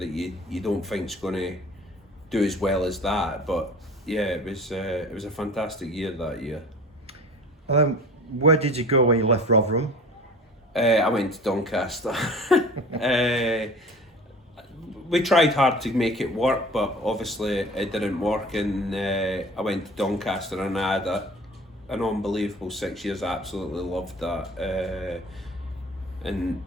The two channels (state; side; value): normal; both; correlation 0.42